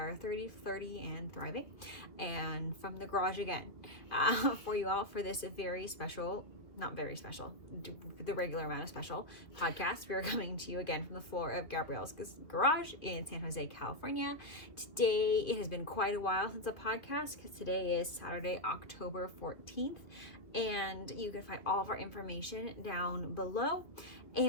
30, 30, and thriving. And from the garage again for you all for this very special, not very special, the regular amount of special podcast. We are coming to you again from the floor of Gabrielle's garage in San Jose, California. Today, it has been quite a while since a podcast because today is Saturday, October 14th. And you can find all of our information down below.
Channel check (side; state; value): right; late; 2.1 ms